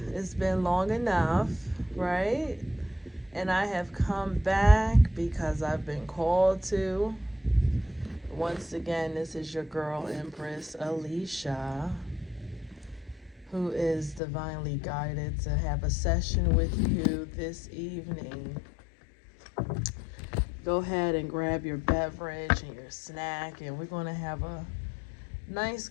It's been long enough, right? And I have come back because I've been called to. Once again, this is your girl, Empress Alicia, who is divinely guided to have a session with you this evening. Go ahead and grab your beverage and your snack, and we're going to have a nice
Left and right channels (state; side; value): drops out; right; at 14.2 s